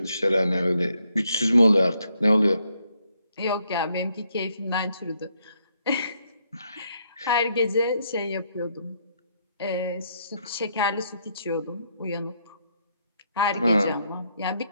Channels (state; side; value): inverted; both; correlation -0.75